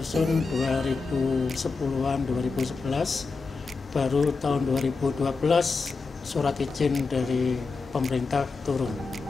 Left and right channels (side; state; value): right; quieter; 4.3 dB